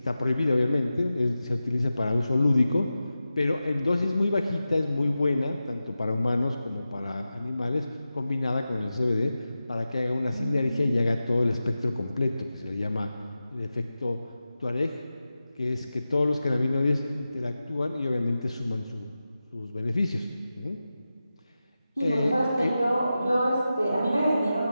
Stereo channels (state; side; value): inverted; both; correlation -0.93